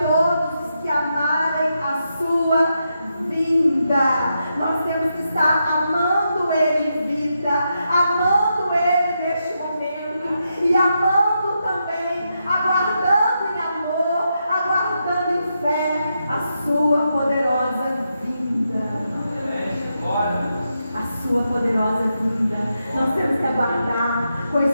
os que amarem a sua vinda. Nós temos que estar amando Ele em vida, amando Ele neste momento, e amando também, aguardando em amor, aguardando em fé a sua poderosa vinda. A sua poderosa vinda. Nós temos que aguardar com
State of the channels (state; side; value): inverted; both; correlation -0.84